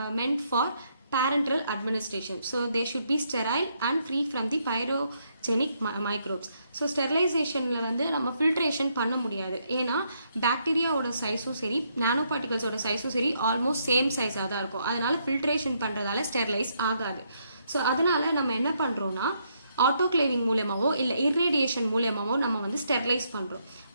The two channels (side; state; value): both; inverted; correlation -0.75